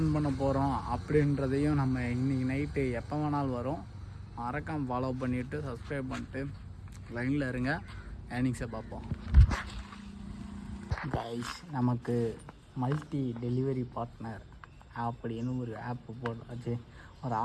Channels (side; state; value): both; identical; correlation 1.00